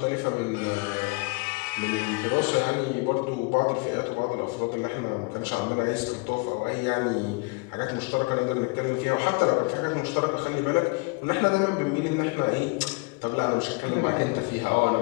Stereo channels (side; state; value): right; quieter; 28.7 dB